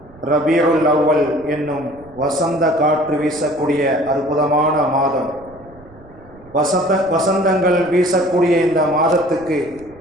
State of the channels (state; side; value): noise; right; rumble, 23 dB below the sound